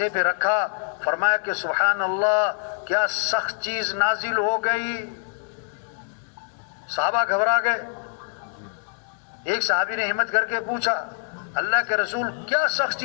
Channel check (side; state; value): right; silent; digital silence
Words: پہ رکھا، فرمایا کہ سبحان اللہ کیا سخت چیز نازل ہو گئی. صحابہ گھبرا گئے. ایک صحابی نے ہمت کر کے پوچھا اللہ کے رسول کیا سخت